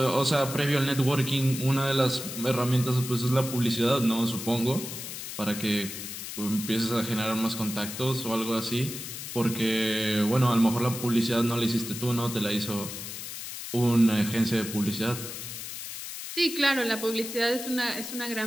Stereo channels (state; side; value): noise; left; hiss, 8 dB below the sound